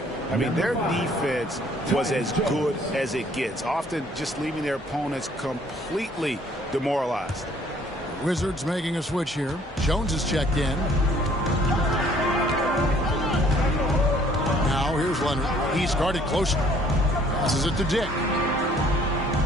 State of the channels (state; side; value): normal; both; correlation 0.59